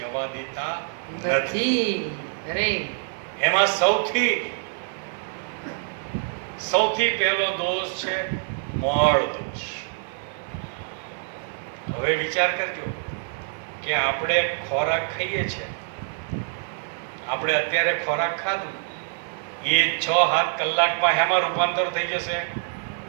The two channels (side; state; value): left; silent; 56 dB below the other